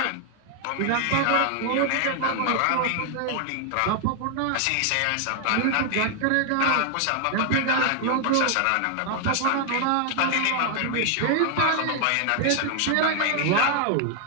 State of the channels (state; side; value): different; both; correlation 0.00